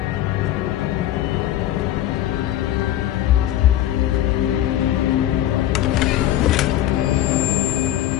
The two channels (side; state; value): right; quieter; 12.8 dB